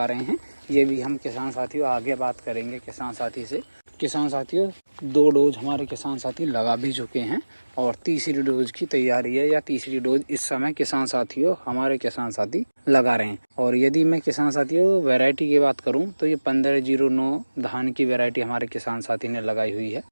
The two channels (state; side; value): inverted; both; correlation -1.00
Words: रहे हैं ये भी हम किसान साथियों आगे बात करेंगे किसान साथी से। किसान साथियों 2 डोज हमारे किसान साथी लगा भी चुके हैं और तीसरी डोज की तैयारी है या तीसरी डोज इस समय किसान साथियों हमारे किसान साथी लगा रहे हैं। और यदि मैं किसान साथियों वैरायटी की बात करूं तो ये 1509 धान की वैरायटी हमारे किसान साथी ने लगाई हुई है।